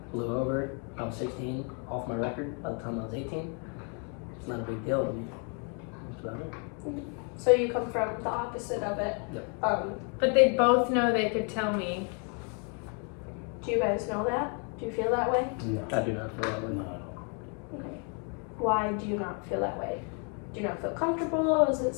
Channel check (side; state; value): right; quieter; 38.4 dB